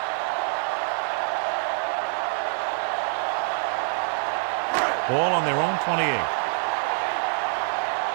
Ball on their own 28.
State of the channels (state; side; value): silent; left; 61 dB below the other